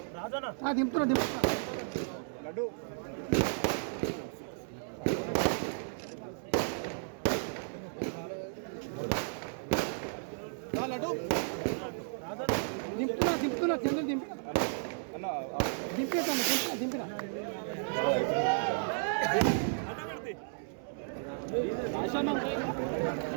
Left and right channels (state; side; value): silent; left; 55 dB below the other